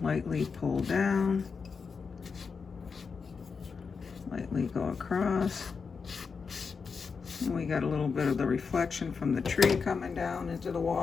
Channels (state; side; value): quieter; right; 5.4 dB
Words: lightly pull down, lightly go across. And we got a little bit of the reflection from the tree coming down into the